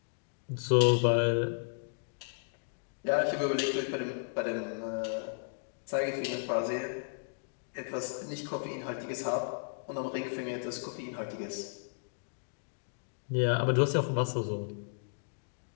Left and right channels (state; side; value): silent; right; digital silence